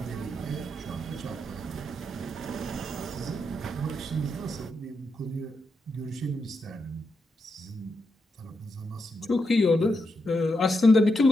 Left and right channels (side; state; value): both; normal; correlation 0.84